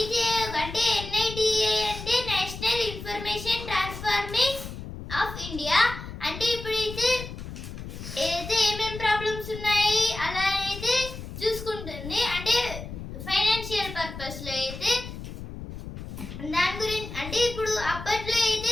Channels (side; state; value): left; noise; rumble, 10 dB below the sound